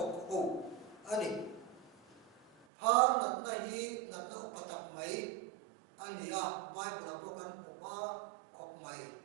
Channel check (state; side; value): drops out; left; at 2.7 s